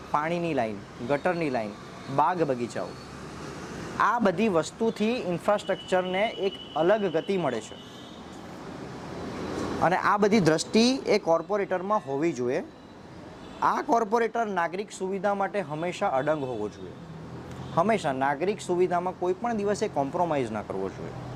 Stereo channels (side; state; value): both; identical; correlation 1.00